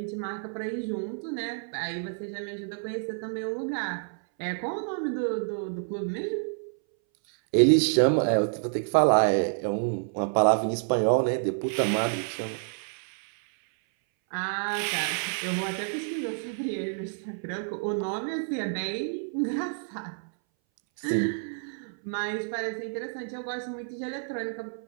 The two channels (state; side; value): silent; left; 59 dB below the other